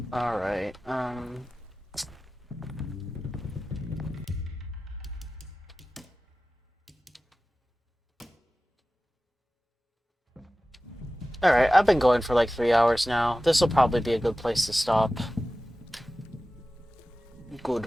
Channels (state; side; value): normal; both; correlation 0.96